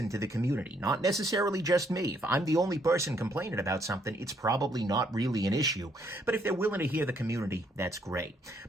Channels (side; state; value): both; normal; correlation 0.70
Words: to the community. Not necessarily just me. If I'm the only person complaining about something, it's probably not really an issue. But if they're willing to hear the community, that's great.